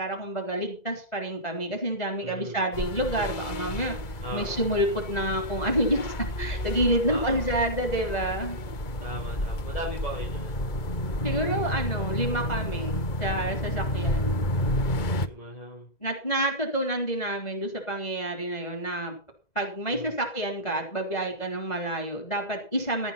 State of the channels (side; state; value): right; late; 2.0 ms